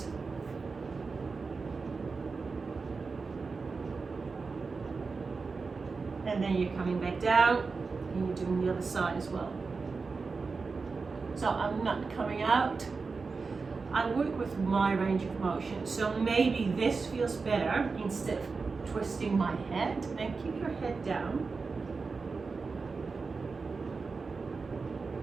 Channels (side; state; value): left; quieter; 4.5 dB